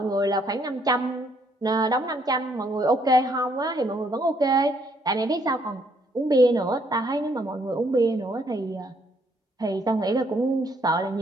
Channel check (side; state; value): both; normal; correlation 0.69